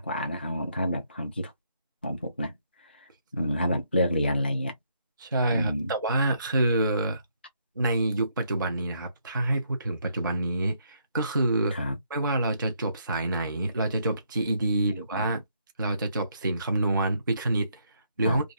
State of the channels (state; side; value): inverted; both; correlation -0.73